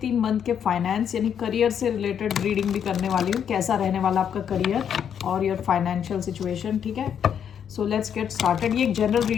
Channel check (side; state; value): right; quieter; 8.4 dB